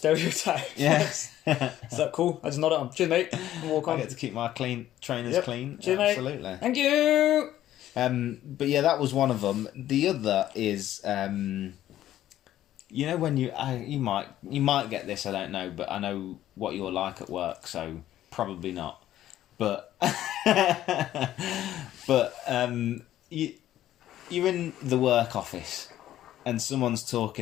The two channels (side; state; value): right; quieter; 12.8 dB